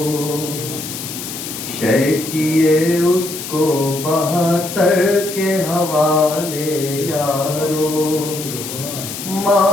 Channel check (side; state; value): left; noise; hiss, 8 dB below the sound